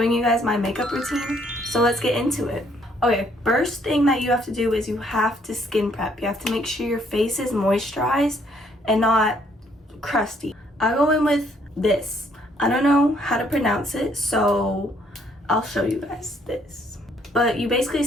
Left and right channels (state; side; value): normal; both; correlation 0.67